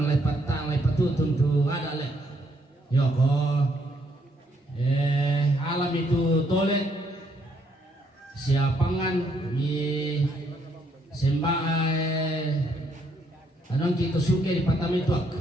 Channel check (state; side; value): normal; both; correlation 0.71